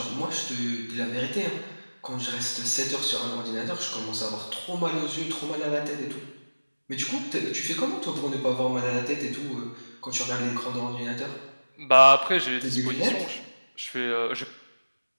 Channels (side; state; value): both; inverted; correlation -1.00